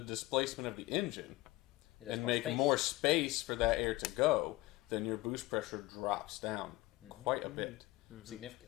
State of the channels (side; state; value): right; quieter; 19.9 dB